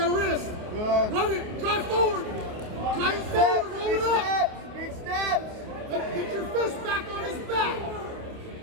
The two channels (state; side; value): late; left; 29 ms